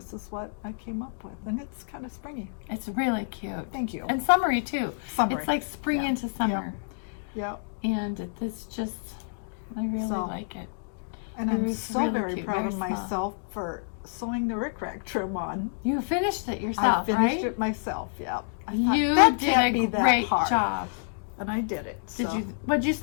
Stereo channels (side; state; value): right; silent; digital silence